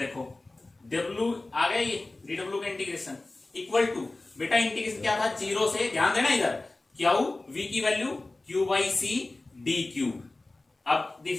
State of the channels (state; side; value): quieter; right; 3.0 dB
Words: डब्ल्यू आ गया, ये डी डब्ल्यू का इंटीग्रेशन इक्वल टू, बेटा इंटीग्रेशन क्या था, जीरो से, ध्यान देना इधर, क्यू वी की value Q by C D Q, अब